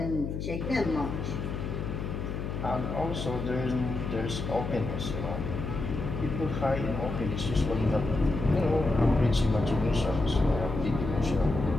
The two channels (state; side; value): noise; left; hum, 4 dB below the sound